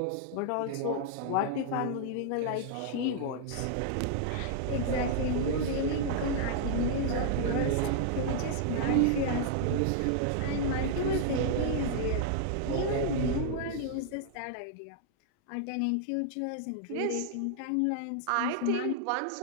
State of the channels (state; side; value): different; both; correlation -0.01